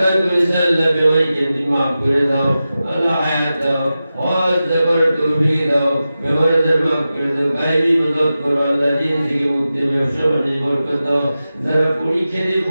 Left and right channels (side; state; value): both; inverted; correlation -0.93